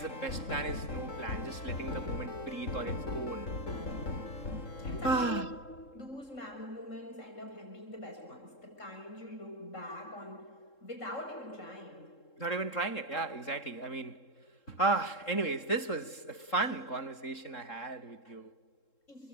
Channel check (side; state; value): right; late; 3.7 ms